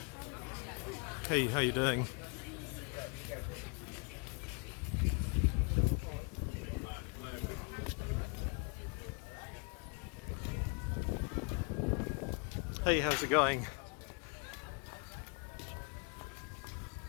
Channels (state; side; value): quieter; right; 33.0 dB